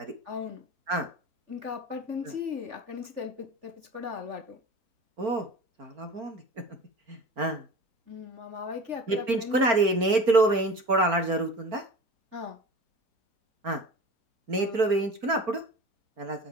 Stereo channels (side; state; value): left; late; 4.4 ms